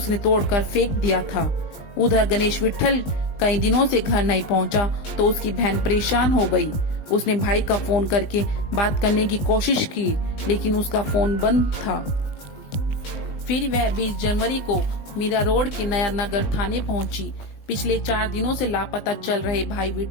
तोड़कर फेंक दिया था। उधर गणेश विट्ठल कई दिनों से घर नहीं पहुंचा तो उसकी बहन परेशान हो गई। उसने भाई का फोन करके बात करने की कोशिश की, लेकिन उसका फोन बंद था। फिर वह 20 जनवरी को मीरा रोड के नया नगर थाने पहुंची। पिछले 4 दिनों से लापता चल रहे भाई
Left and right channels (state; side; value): late; right; 20 ms